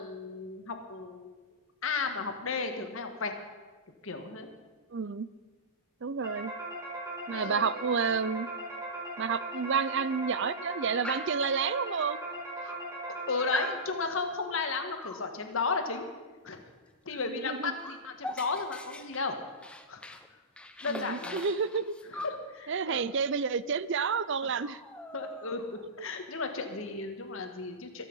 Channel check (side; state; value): both; normal; correlation -0.17